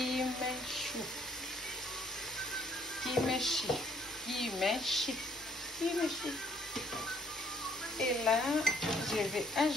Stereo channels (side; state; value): both; normal; correlation 0.65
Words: Kimchi. Kimchi. Kimchi. Et là, je vais